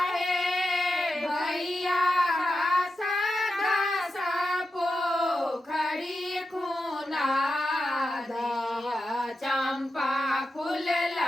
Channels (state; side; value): normal; both; correlation 0.90